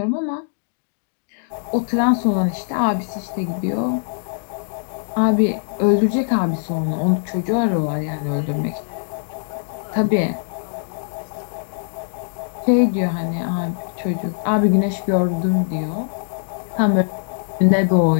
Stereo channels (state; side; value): silent; right; digital silence